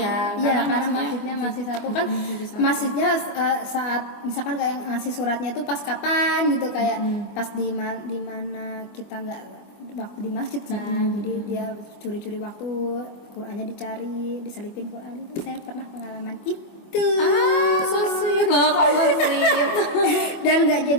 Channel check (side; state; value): right; late; 24 ms